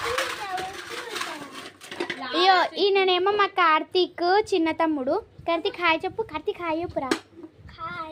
అయ్యో, ఈయననేమో మా కార్తీక్ చిన్న తమ్ముడు. కార్తీక్ హాయ్ చెప్పు. కార్తీక్ హాయ్ చెప్పురా.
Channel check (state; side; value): identical; both; correlation 1.00